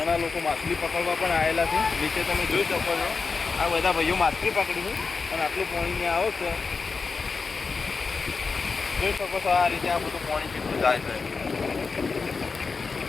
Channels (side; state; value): right; quieter; 4.7 dB